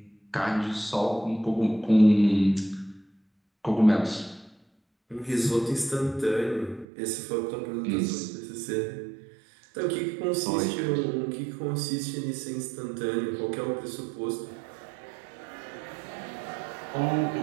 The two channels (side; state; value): left; drops out; at 6.9 s